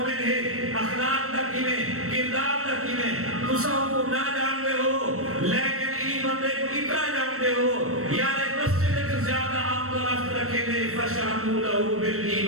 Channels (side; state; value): left; late; 0.63 ms